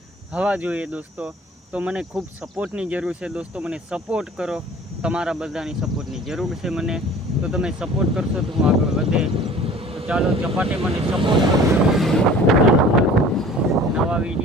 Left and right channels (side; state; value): both; normal; correlation 0.46